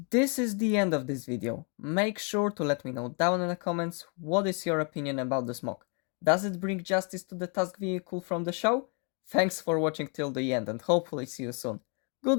This is the end of this video. Make sure to let me know down in the comments what is your opinion about this mock. Does it bring justice to the task vehicle from the show? Thanks for watching till the end and hopefully see you soon.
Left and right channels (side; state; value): right; quieter; 36.4 dB